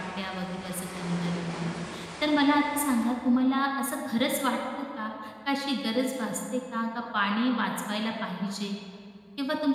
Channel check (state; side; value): identical; both; correlation 1.00